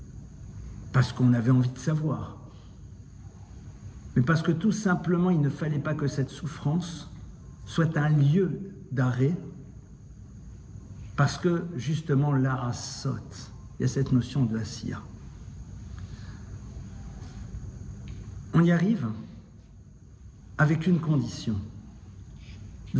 Parce qu'on avait envie de savoir. Mais parce que tout simplement, il ne fallait pas que cette souffrance soit un lieu d'arrêt. Parce que, justement, l'ara saute. Il y a cette notion de asiya. On y arrive avec une condition.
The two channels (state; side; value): identical; both; correlation 1.00